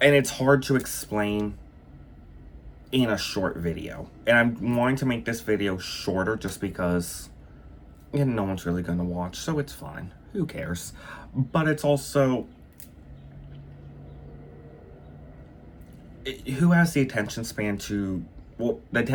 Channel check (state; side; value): identical; both; correlation 1.00